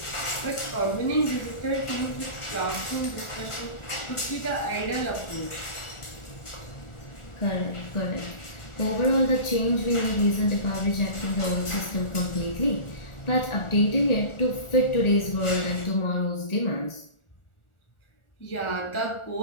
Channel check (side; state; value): right; late; 1.4 ms